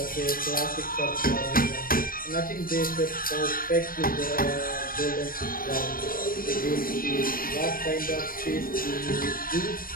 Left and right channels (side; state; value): right; late; 0.41 ms